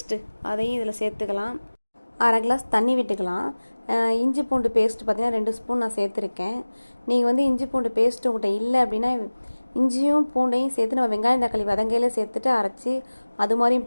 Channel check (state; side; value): inverted; both; correlation -1.00